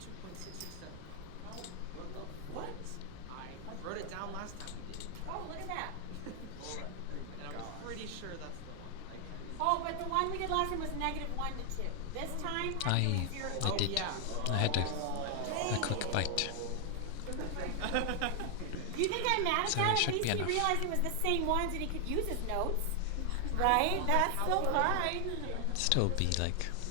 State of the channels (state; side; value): different; both; correlation 0.00